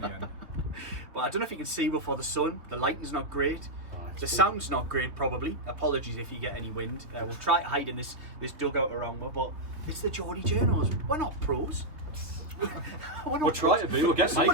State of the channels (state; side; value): late; left; 3.2 ms